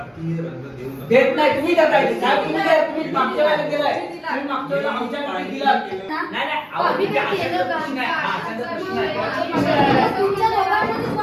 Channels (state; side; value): identical; both; correlation 1.00